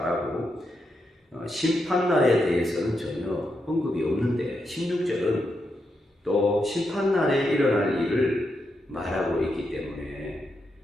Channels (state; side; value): normal; both; correlation 0.84